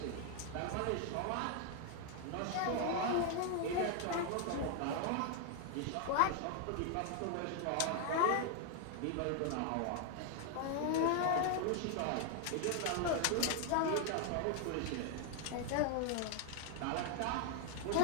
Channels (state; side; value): different; both; correlation 0.00